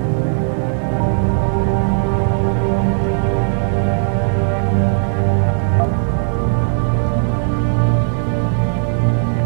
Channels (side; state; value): left; silent; digital silence